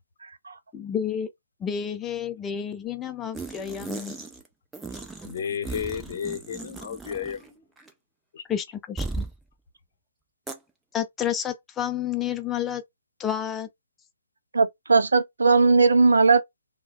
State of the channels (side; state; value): both; inverted; correlation -0.60